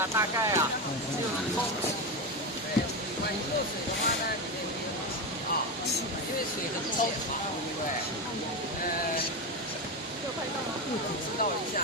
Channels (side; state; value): both; normal; correlation 0.15